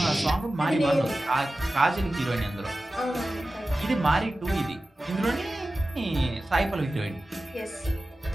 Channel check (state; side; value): normal; both; correlation 0.95